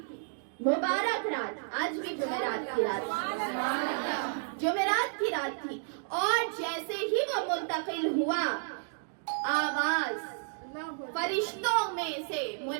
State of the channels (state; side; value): silent; left; digital silence